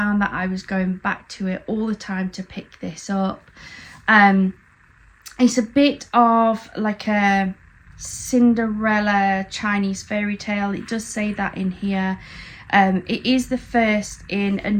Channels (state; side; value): identical; both; correlation 1.00